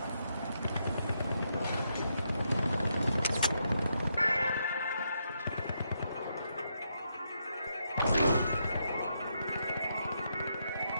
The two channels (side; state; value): both; inverted; correlation -0.80